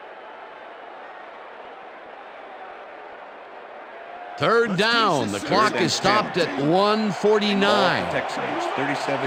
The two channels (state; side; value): identical; both; correlation 1.00